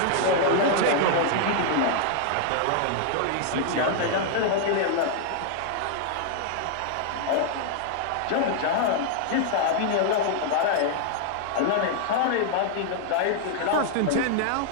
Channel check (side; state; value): both; different; correlation 0.00